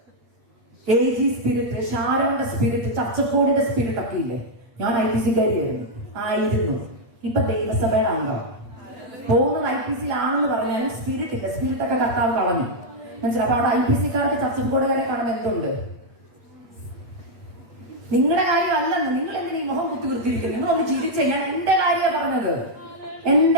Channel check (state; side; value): late; left; 8.4 ms